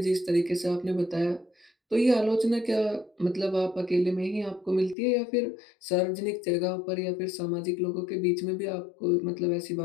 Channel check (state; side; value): drops out; right; at 5.0 s